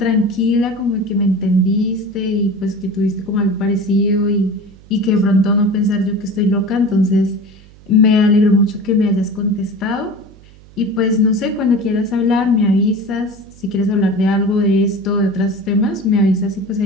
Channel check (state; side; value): noise; right; hum, 23 dB below the sound